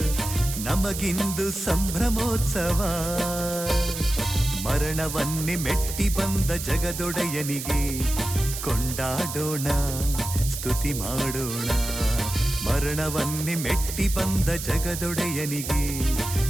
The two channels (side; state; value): right; noise; hiss, 7 dB below the sound